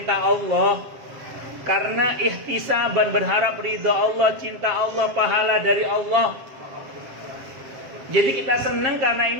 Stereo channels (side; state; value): left; late; 7.5 ms